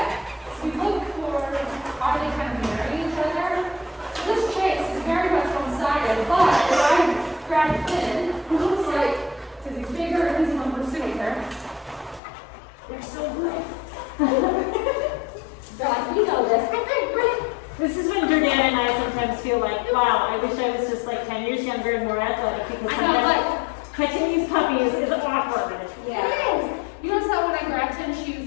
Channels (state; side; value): drops out; right; at 12.2 s